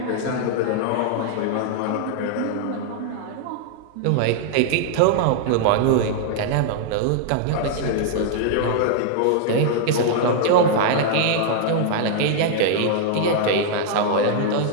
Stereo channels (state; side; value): different; both; correlation -0.01